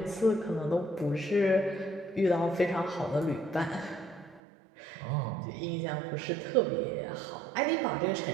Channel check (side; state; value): left; drops out; at 4.4 s